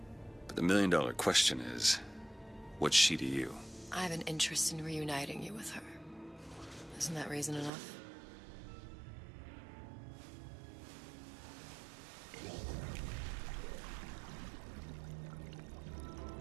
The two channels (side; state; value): left; drops out; at 7.7 s